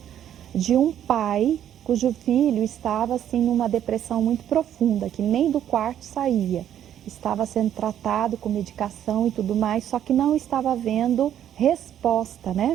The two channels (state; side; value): quieter; left; 10.5 dB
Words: de um pai cujo filho estava assim numa depressão muito profunda, que nem do quarto saía. Estava sendo tratado com medicação e tudo mais, só que não estava havendo resposta,